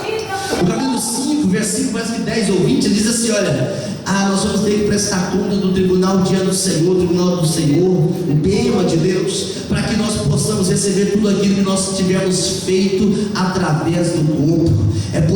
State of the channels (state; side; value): identical; both; correlation 1.00